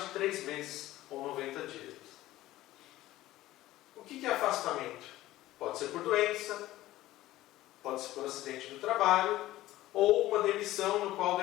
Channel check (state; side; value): quieter; right; 15.9 dB